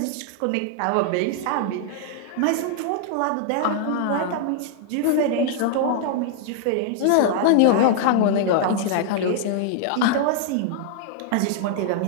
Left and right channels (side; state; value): both; different; correlation 0.00